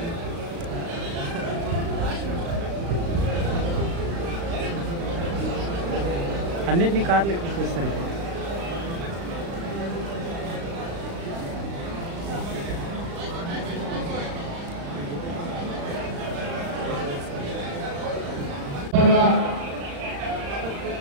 అన్నిటినీ కార్లు ఎక్కిస్తారు.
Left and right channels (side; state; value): left; late; 35 ms